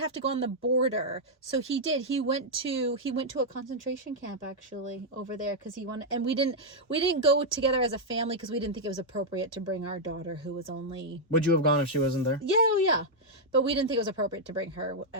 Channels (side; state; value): both; normal; correlation -0.03